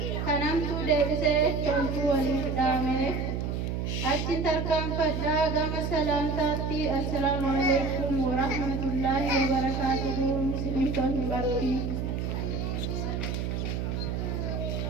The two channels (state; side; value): noise; right; hum, 2 dB below the sound